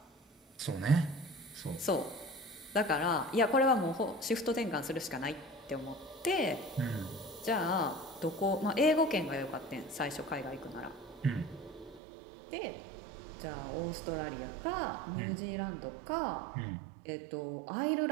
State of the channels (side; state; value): left; drops out; at 12.0 s